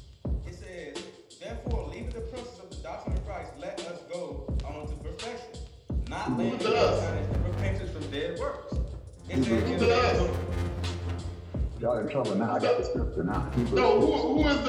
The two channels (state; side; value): identical; both; correlation 1.00